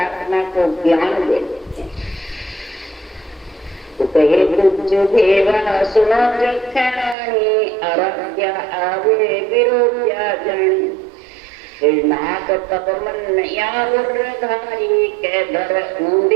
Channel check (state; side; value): drops out; left; at 7.2 s